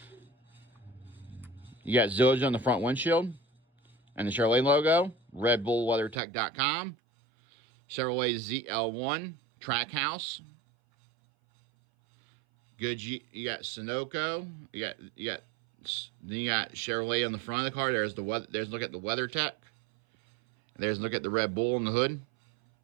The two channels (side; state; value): left; drops out; at 6.2 s